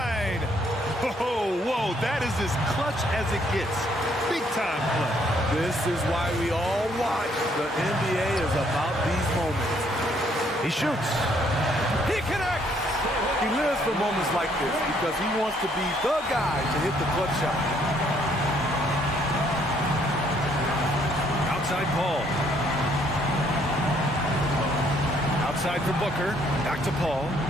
Oh, whoa, that is as clutch as it gets. Big time play. This is why we all watch. The NBA is about these moments. He shoots. He connects. He lives for moments like this because he wants to be the guy to hit the clutch shot. Outside Paul. Outside for Booker. Back to Paul.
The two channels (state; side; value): normal; both; correlation 0.67